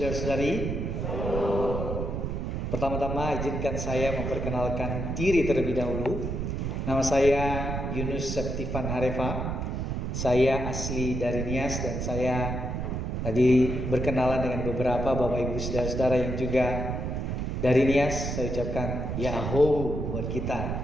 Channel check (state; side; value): noise; right; rumble, 2 dB below the sound